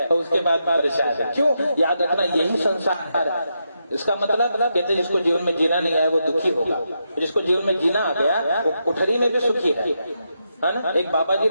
तो उसके बाद परेशान है। क्यों? याद रखना यही संसार है। इसका मतलब कहते जिसको जीवन में जीना नहीं आया वो दुखी होगा, जिसको जीवन में जीना आ गया वो कुठरी में भी सुखी है ना। एक बाबा जी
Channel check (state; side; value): inverted; both; correlation -0.84